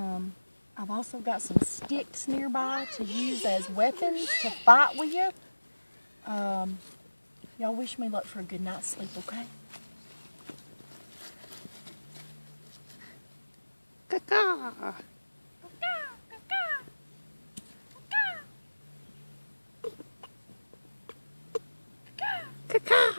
I've also got some sticks nearby to use as weapons to fight with you. Y'all wish me luck for a good night's sleep, okay? Caca.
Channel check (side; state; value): both; inverted; correlation -1.00